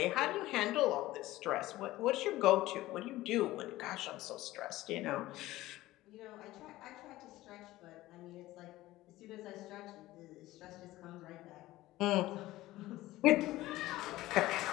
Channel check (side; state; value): right; quieter; 16.9 dB